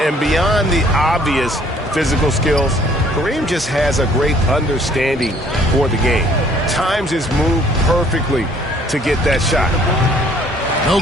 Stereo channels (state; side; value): normal; both; correlation 0.59